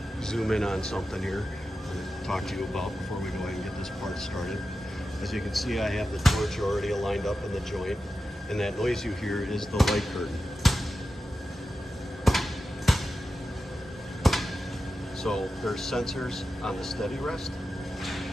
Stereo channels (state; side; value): normal; both; correlation 0.91